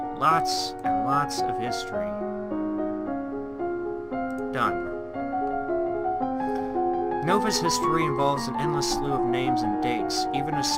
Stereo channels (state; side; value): identical; both; correlation 1.00